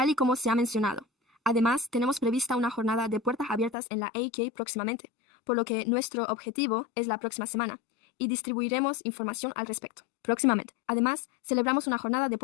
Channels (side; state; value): right; drops out; at 3.8 s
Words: y como se ha mencionado. Además, tenemos prevista una jornada de puertas abiertas en la AK próximamente, por lo que nuestro objetivo es la próxima semana, y distribuiremos información al respecto próximamente. Además, celebramos una jornada de